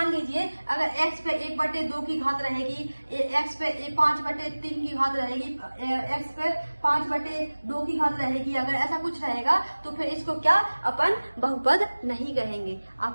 लीजिए अगर x पे 1/2 की घात रहेगी, x पे 5/3 की घात रहेगी, x पे 5/2 की घात रहेगी, अगर ऐसा कुछ रहेगा तो फिर इसको क्या अपन बहुपद नहीं कहेंगे।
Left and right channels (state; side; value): inverted; both; correlation -1.00